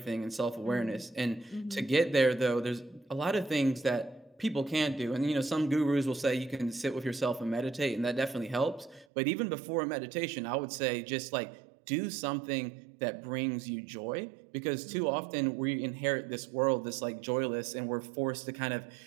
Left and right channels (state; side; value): drops out; left; at 9.1 s